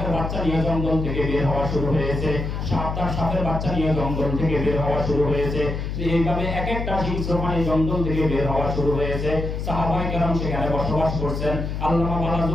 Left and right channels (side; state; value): left; noise; hum, 4 dB below the sound